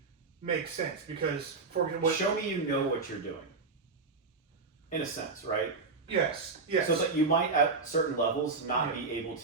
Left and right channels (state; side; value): quieter; left; 4.2 dB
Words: makes sense, because show me you know what you're doing. In a sense, right? Yes. So that you might at certain levels not be able